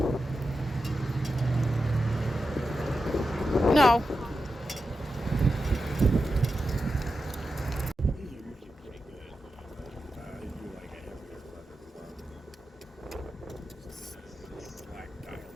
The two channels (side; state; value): both; normal; correlation 0.90